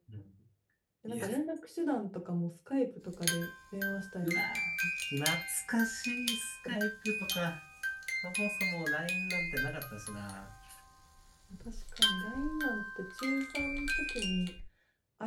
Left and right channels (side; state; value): both; identical; correlation 1.00